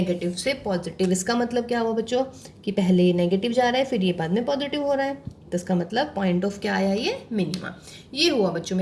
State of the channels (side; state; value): both; identical; correlation 1.00